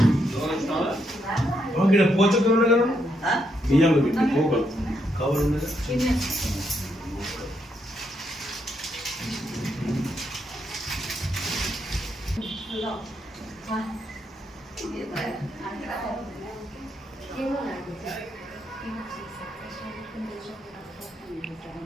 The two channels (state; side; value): normal; both; correlation 0.78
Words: ఇక్కడ పోచకం ఉంది కదా బియ్యంలో పెట్టి పోగలు కవర్ ఉంది